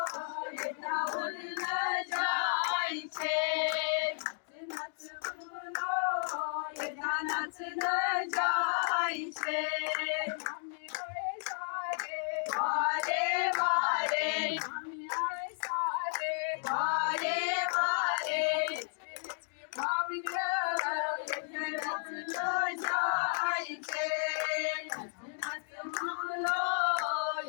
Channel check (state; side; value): silent; right; digital silence